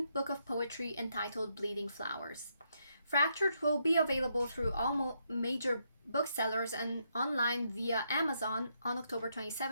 book of poetry entitled Bleeding Flowers. Fractured will be available through all major booksellers and online via Amazon on October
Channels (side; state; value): both; inverted; correlation -0.78